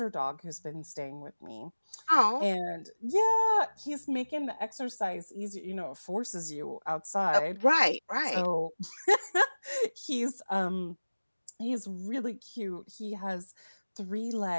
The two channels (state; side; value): inverted; both; correlation -1.00